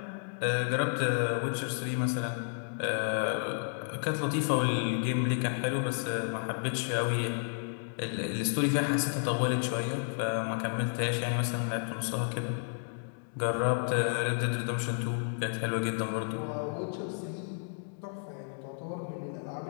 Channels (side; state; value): right; silent; digital silence